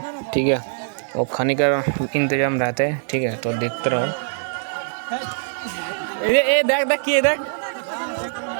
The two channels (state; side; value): silent; left; 61 dB below the other